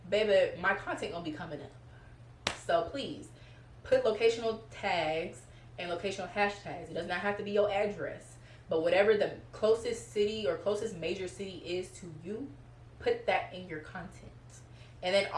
baby, my content gonna be coming up. So please put locational tags and locational hashtags. It does not have to be your address, but whatever the closest city or closest major city is to you, put that in your content. And then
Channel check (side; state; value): both; identical; correlation 1.00